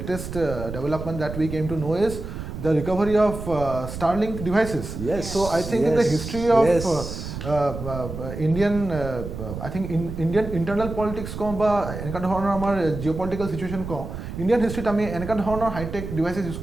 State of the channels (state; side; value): noise; right; rumble, 8 dB below the sound